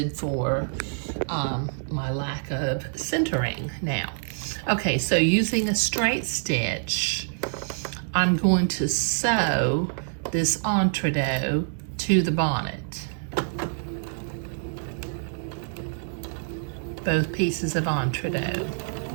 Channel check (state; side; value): silent; left; 61 dB below the other